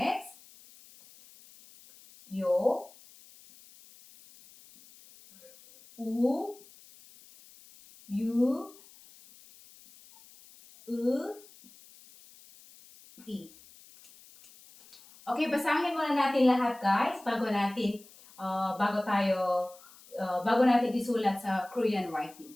Yo. U. Yu. I. Okay, basahin muna natin lahat guys bago natin isulat sa Korean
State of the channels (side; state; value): left; noise; hiss, 23 dB below the sound